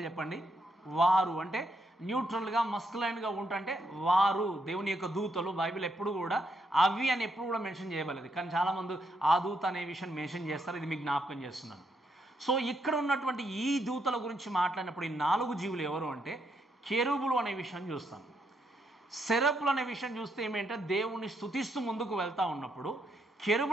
చెప్పండి? వారు అంటే న్యూట్రల్గా మస్కులైన్గా ఉంటుంటే వారు దేవుని యొక్క దూతలు. బైబిల్ ఎప్పుడు కూడా అవి అని ఎప్పుడు కూడా మెన్షన్ చేయబడలేదు. కానీ చాలామంది ఆ దూత అనే విషయం మెన్షన్ చేస్తారు. ఇది మీకు జ్ఞాపకం చేస్తున్నాను. సో ఇక్కడ ఉన్నటువంటి ఈ దూతల గురించి మాట్లాడినప్పుడు ఈ 4 జీవులు ఎవరు అంటే కెరూబులు అనే విషయం చూస్తాం. సెరపులు అనే విషయం చూస్తే ఏమేంటే దేవుణ్ణి స్తుతిస్తూ ముందుకు వెళ్తూ ఉన్నప్పుడు,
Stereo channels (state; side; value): normal; both; correlation 0.77